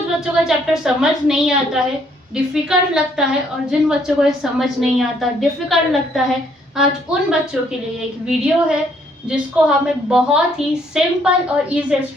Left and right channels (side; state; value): both; normal; correlation 0.67